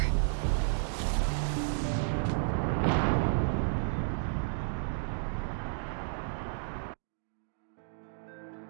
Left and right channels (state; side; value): silent; left; digital silence